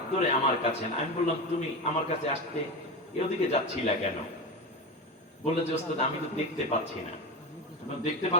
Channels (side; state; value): both; normal; correlation 0.20